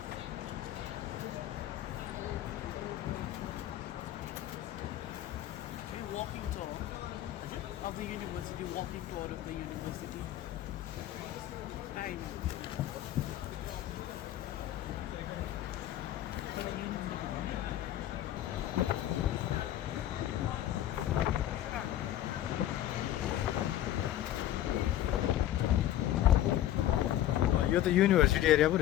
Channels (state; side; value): quieter; right; 12.7 dB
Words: walking tour of the university, walking tour of the university. I know. यो त युनिभर्सिटी एरिया पो